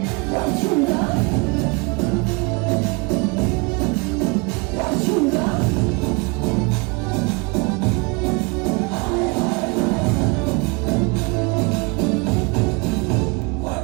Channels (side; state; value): left; quieter; 29.4 dB